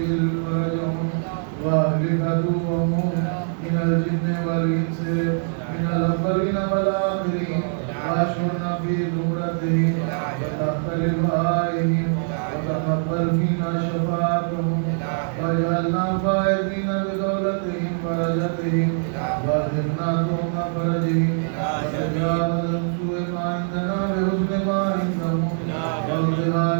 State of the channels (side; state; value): left; silent; digital silence